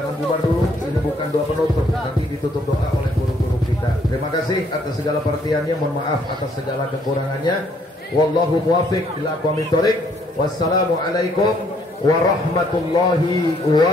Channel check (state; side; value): normal; both; correlation 0.67